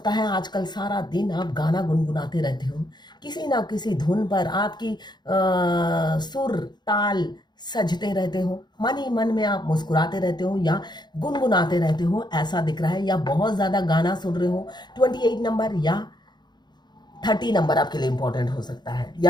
है आजकल सारा दिन आप गाना गुनगुनाते रहते हो, किसी ना किसी धुन पर आपकी सुर ताल सजते रहते हो, मन ही मन में आप मुस्कुराते रहते हो या गुनगुनाते रहते हो, ऐसा दिख रहा है। या बहुत ज़्यादा गाना सुन रहे हो। 28 नंबर या 30 नंबर आपके लिए इंपॉर्टेंट हो सकता है,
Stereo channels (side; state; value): right; late; 0.21 ms